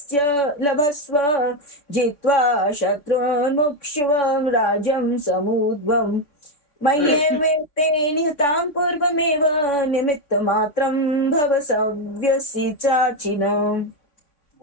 लभस्व जित्वा शत्रून्मुक्ष्व राज्यं समुद्भवम् मय्येवेते निहतां पूर्वमेव निमित्तमात्रं भव सव्यसि चाचिन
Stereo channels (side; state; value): right; late; 3.5 ms